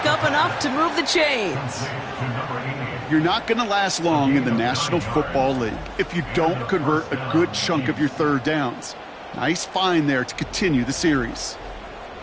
up enough to move the chains. You're not going to last long in the National Football League if you don't convert a good chunk of your 3rd downs. Nice find there to continue the series.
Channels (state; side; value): identical; both; correlation 1.00